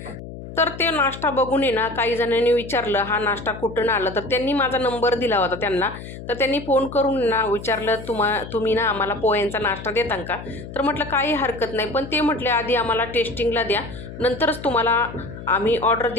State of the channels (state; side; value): noise; left; hum, 12 dB below the sound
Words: तर ते नाश्ता बघून आहे ना काही जणांनी विचारलं, हा नाश्ता कुठून आला? तर त्यांनी माझा नंबर दिला होता त्यांना. तर त्यांनी फोन करून ना विचारलं, तुम्ही ना आम्हाला पोह्यांचा नाश्ता देता का? तर म्हटलं काही हरकत नाही. पण ते म्हटले, आधी आम्हाला टेस्टिंगला द्या, नंतरच तुम्हाला आम्ही ऑर्डर